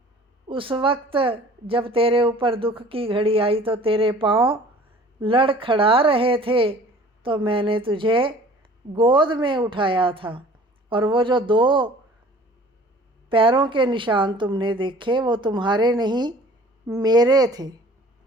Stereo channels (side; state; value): both; normal; correlation 0.49